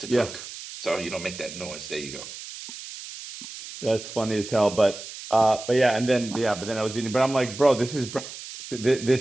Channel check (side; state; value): right; noise; hiss, 12 dB below the sound